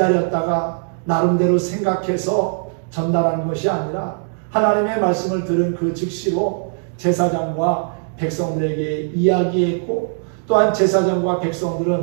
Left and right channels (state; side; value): silent; left; digital silence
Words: 나름대로 생각해서 전달하는 것이 아니라 하나님의 말씀을 들은 그 즉시로 제사장과 백성들에게 이야기했고 또한 제사장과